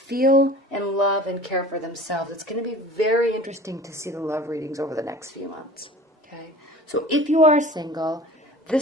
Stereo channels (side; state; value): both; normal; correlation 0.42